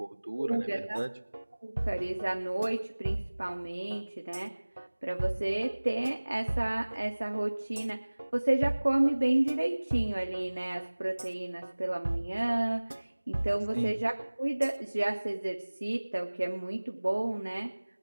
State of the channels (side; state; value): both; inverted; correlation -1.00